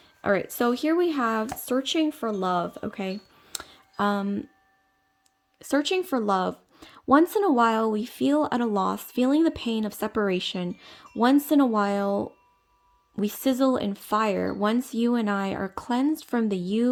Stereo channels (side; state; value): both; identical; correlation 1.00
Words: All right, so here we have Searching for Love, okay? Searching for love. Once in a while, we feel at a loss, feeling the pain of separation. Once in a while, we sizzle in fire. Once you and I are cleansed from the